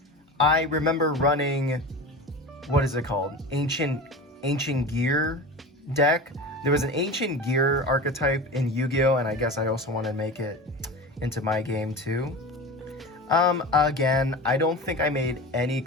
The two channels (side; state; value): both; normal; correlation 0.31